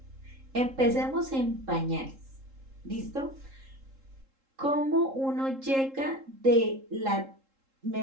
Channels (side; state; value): left; late; 3.7 ms